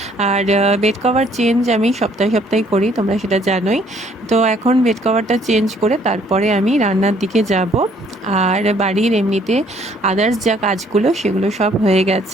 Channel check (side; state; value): both; normal; correlation 0.63